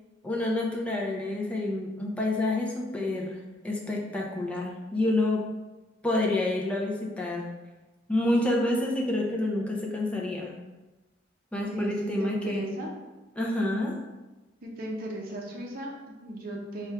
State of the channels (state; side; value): normal; both; correlation 0.72